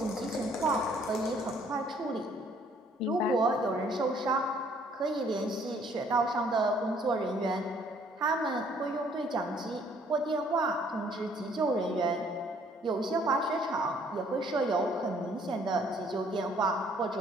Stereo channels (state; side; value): normal; both; correlation 0.62